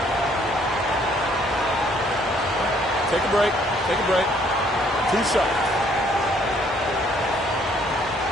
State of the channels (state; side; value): normal; both; correlation 0.64